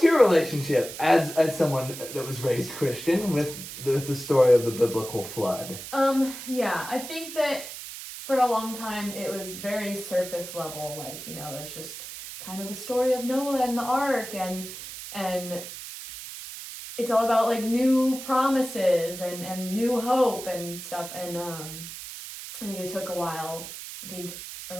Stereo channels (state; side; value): noise; right; hiss, 11 dB below the sound